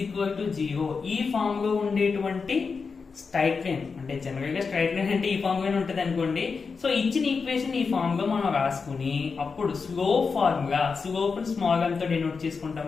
equal to 0 ఈ ఫామ్ లో ఉండేటువంటి స్ట్రైట్ లైన్, అంటే జనరల్ గా స్ట్రైట్ లైన్ అంటే ఈ ఫామ్ లోనే ఉంటుంది అనుకోండి. సో ఇచ్చిన ఈక్వేషన్ ఈ ఫామ్ లో మనం రాసుకుని అప్పుడు slope formula, slope small m తో డినోట్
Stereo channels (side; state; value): right; quieter; 5.0 dB